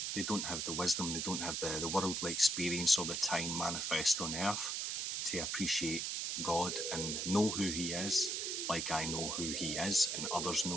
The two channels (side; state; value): right; noise; hiss, 1 dB below the sound